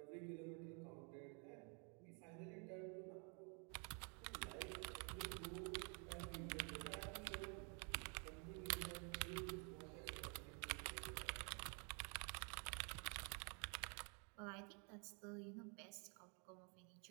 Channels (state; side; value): quieter; left; 37.7 dB